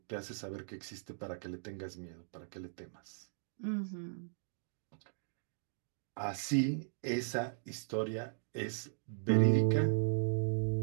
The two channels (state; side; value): silent; left; digital silence